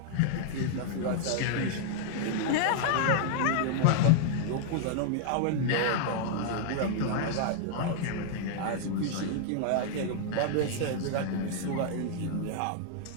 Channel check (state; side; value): different; both; correlation -0.01